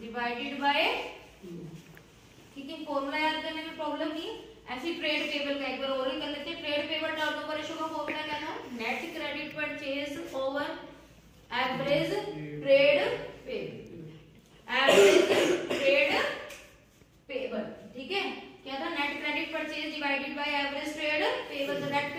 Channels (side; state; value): both; identical; correlation 1.00